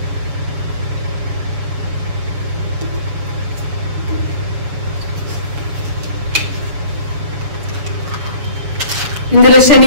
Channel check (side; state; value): left; late; 7.2 ms